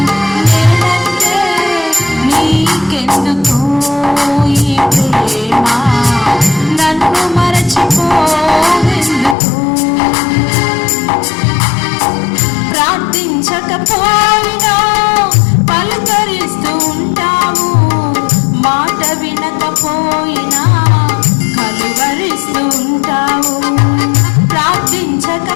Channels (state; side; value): drops out; right; at 9.3 s